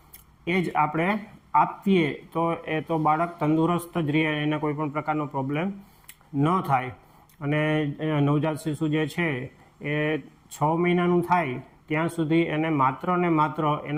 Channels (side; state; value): both; identical; correlation 1.00